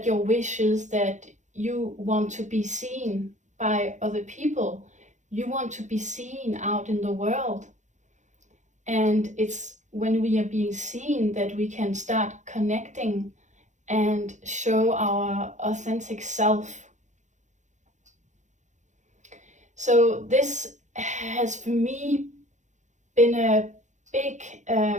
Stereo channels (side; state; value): left; late; 0.35 ms